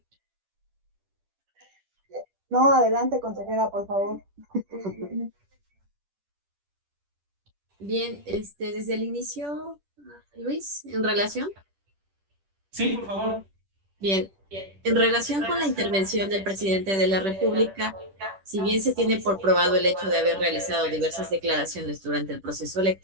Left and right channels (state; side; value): late; left; 10 ms